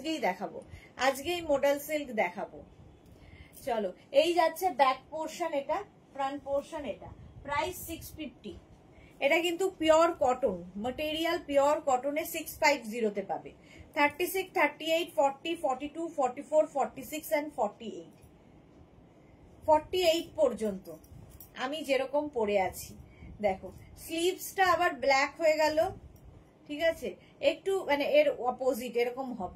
দেখাবো, আজকেই মডেল সিল্ক দেখাবো। চলো এই যাচ্ছে ব্যাক পোর্শন, এটা ফ্রন্ট পোর্শন। এটা প্রাইস 650। এটা কিন্তু পিওর কটন ম্যাটেরিয়াল, পিওর কটনে 650 তে পাবে। 36, 38, 40, 42, 44, 46 and 48 48 পর্যন্ত আমি যেরকম পরে আছি। দেখো স্লিভসটা আবার ব্ল্যাক হয়ে গেল, ঠিক আছে, একটু মানে এর অপোজিট এরকম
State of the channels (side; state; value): both; identical; correlation 1.00